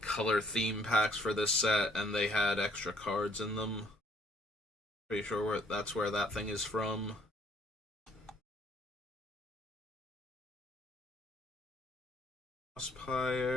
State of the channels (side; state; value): both; normal; correlation 0.63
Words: color theme packs for this set and they had extra cards in them. Pretty sure that's where that thing is from.